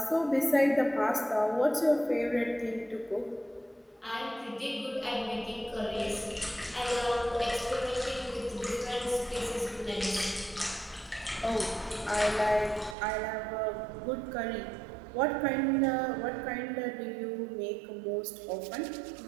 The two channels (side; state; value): left; drops out; at 13.0 s